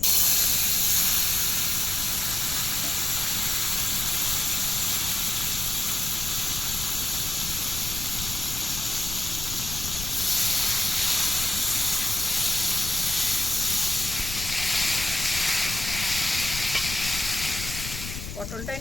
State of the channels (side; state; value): left; noise; rumble, 8 dB below the sound